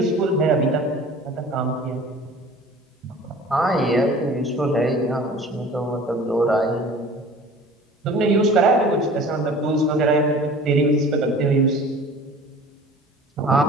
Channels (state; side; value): normal; both; correlation 0.44